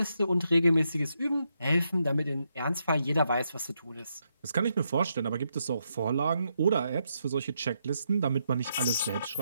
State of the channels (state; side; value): inverted; both; correlation -0.81